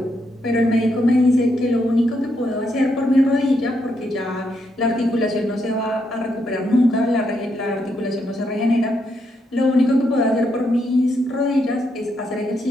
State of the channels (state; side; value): normal; both; correlation 0.79